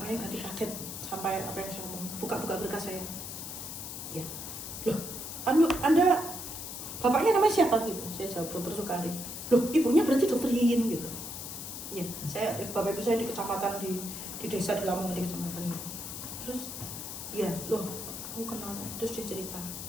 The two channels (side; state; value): left; noise; hiss, 8 dB below the sound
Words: ganti kaget sampai apa yang saya ngomong. Buka-buka berkas saya. Ya. Loh, Anda bapaknya namanya siapa gitu? Saya jawab Dr. Sukari. Loh, ibunya berarti Dr. Yin gitu. Iya, bapak ibu saya di kecamatan di desa di Lamongan di kecamatan itu. Terus, iya, loh, aku kenal. Terus dia cerita,